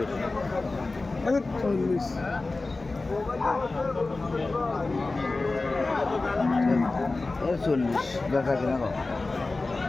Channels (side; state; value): right; quieter; 3.4 dB